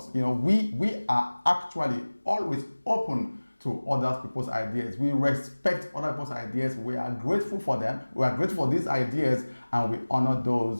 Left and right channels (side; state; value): both; inverted; correlation -1.00